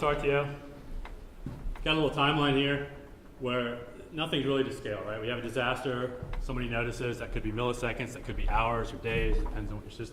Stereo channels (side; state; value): both; identical; correlation 1.00